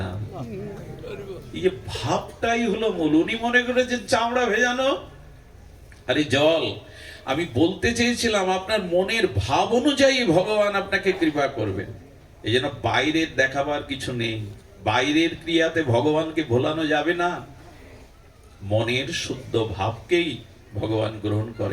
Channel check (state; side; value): identical; both; correlation 1.00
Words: না। এই যে ভাবটাই হলো মূল। উনি মনে করেছেন চামড়া ভেজানো, আরে জল। আমি বলতে চেয়েছিলাম আপনার মনের ভাব অনুযায়ী ভগবান আপনাকে কৃপা করবেন। এই জন্য বাইরের দেখাবার কিছু নেই, বাইরের ক্রিয়াতে ভগবানকে ভোলানো যাবে না, মনের শুদ্ধ ভাবকেই ভগবান গ্রহণ